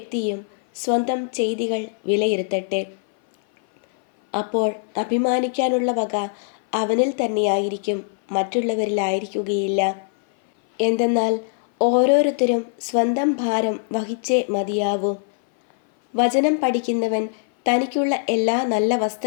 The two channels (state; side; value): silent; right; 58 dB below the other